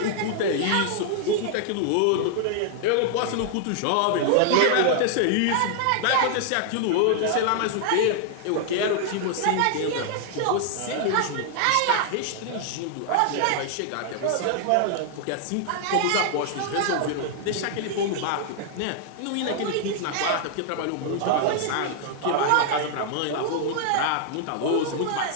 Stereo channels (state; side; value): different; both; correlation 0.00